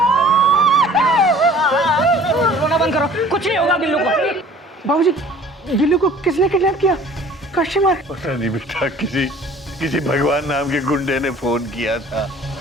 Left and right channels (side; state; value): both; normal; correlation 0.50